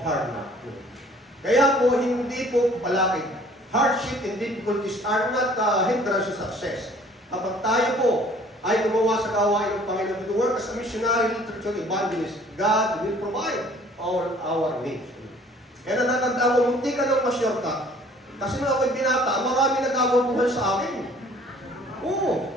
Harvard. Kaya po, hindi po palakid. Hardship and difficulties are not hindrance to success. Kapag tayo po ay gumawa sa gawain ng Panginoon to work as a missionary literature evangelist, God will provide all our needs. Kaya natandaan ko, hindi ka nang ma-shortcut. Kasi nung ako'y binata, marami nagagabuhan sa akin. Oo.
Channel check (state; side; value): normal; both; correlation 0.54